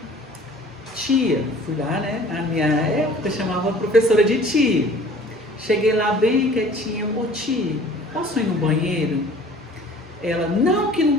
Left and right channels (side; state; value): both; normal; correlation 0.49